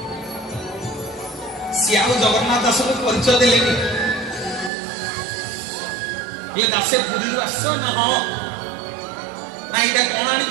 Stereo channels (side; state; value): left; drops out; at 4.7 s